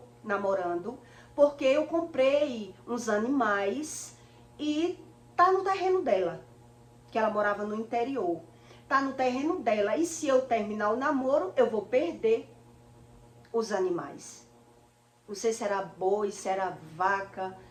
namorando, porque eu comprei uns animais e tá no terreno dela. Que ela morava no interior, tá no terreno dela, e se eu terminar o namoro, eu vou perder os animais. Não sei se era boi, se era vaca.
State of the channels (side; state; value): both; identical; correlation 1.00